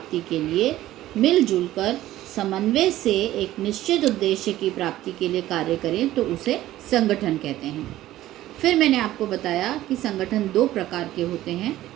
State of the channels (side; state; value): left; quieter; 14.7 dB